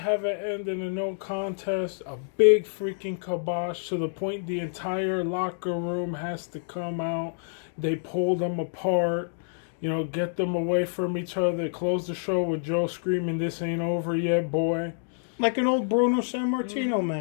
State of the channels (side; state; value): right; silent; digital silence